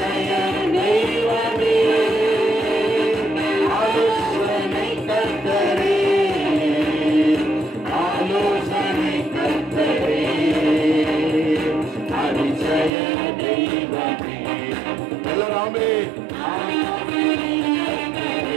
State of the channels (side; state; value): left; drops out; at 12.9 s